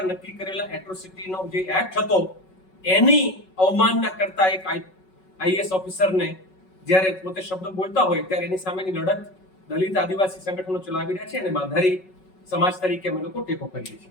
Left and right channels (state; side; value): late; right; 5.4 ms